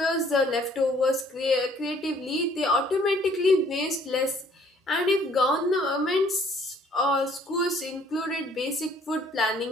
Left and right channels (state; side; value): normal; both; correlation 0.60